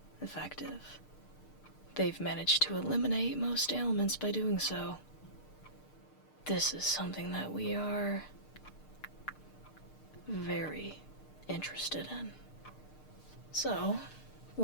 effective. They've managed to eliminate most ailments by doing so. This is something that we are very interested in. So,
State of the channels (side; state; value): right; late; 6.6 ms